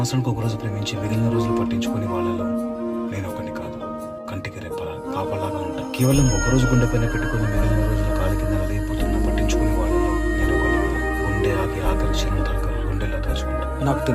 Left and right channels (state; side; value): identical; both; correlation 1.00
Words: ఒక రోజు ప్రేమించి మిగిలిన రోజులు పట్టించుకుని వాళ్ళలో నేను ఒకరిని కాదు. కంటికి రెప్పలా కాపలాగా ఉంటా. కేవలం ఒకరోజు గుండె పైన పెట్టుకుని మిగిలిన రోజులు కాలి కింద నలిగిపోతున్నా పట్టించుకుని వాళ్ళలో నేను ఒకరిని కాదు. గుండె ఆగి ఆఖరి క్షణం దాకా గుండెల్లో దాచుకుంటా. నాకు